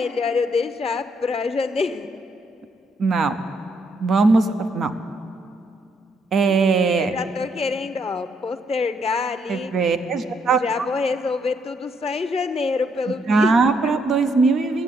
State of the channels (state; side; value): normal; both; correlation 0.73